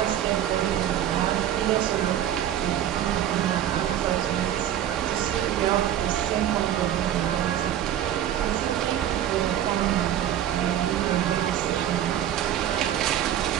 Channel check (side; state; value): left; quieter; 11.1 dB